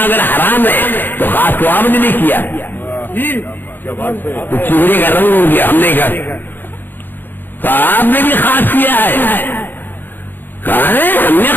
اگر حرام ہے تو خاص تو آپ نے نہیں کیا, تو چہرے کا رنگ ہو گیا. ہم نے کہا تو آپ نے بھی خاص کیا ہے. کہا ہے ہم نے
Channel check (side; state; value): right; late; 0.093 ms